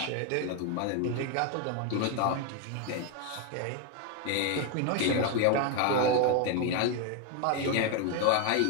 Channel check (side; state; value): both; different; correlation 0.01